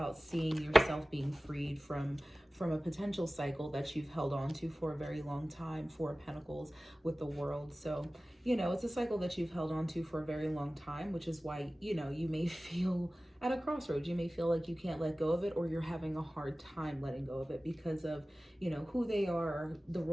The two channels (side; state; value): both; normal; correlation 0.97